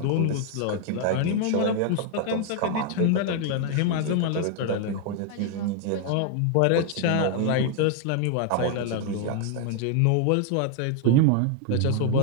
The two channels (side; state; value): both; different; correlation 0.00